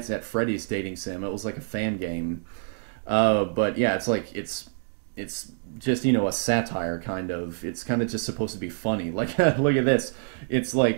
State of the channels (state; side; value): silent; left; digital silence